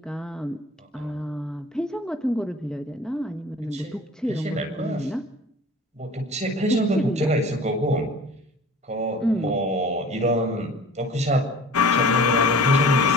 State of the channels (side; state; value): both; normal; correlation 0.44